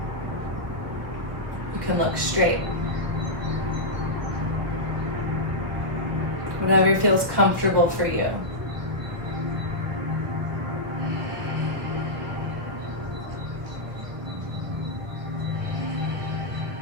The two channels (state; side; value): late; left; 1.4 ms